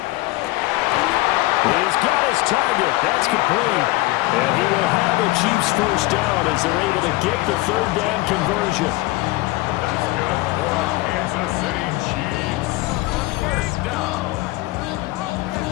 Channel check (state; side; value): quieter; right; 20.2 dB